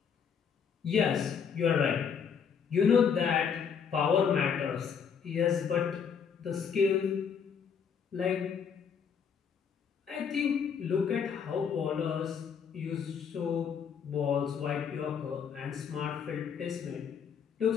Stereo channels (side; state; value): right; quieter; 6.9 dB